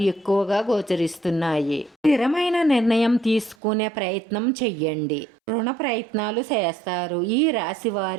ఎక్కువగా గోచరిస్తున్నాయి. స్థిరమైన నిర్ణయం తీసుకునే ప్రయత్నం చెయ్యండి. రుణ ప్రయత్నాలు చేస్తారు. ఈ రాశి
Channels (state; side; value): drops out; left; at 3.6 s